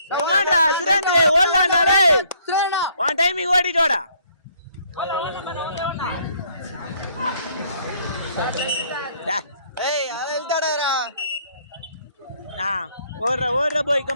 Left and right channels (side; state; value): both; inverted; correlation -0.65